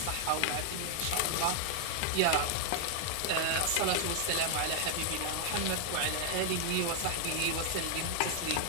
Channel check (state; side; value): different; both; correlation 0.00